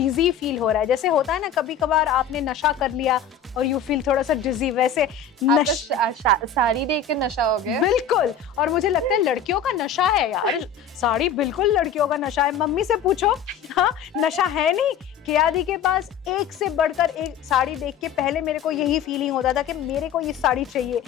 फील हो रहा है। जैसे होता है ना कभी कभार आपने नशा कर लिया और यू फील थोड़ा सा डिजी, वैसे साड़ी देख के नशा हो गया। बिल्कुल, और मुझे लगता है लड़कियों का नशा है यार, साड़ी बिल्कुल लड़कियों का नशा है। मम्मी से पूछो, हाँ नशा है नहीं। कियादी के पास एक से बढ़कर एक साड़ी देख के पहले मेरे को यही फीलिंग होता था कि मेरे को ये साड़ी चाहिए।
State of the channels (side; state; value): right; quieter; 6.8 dB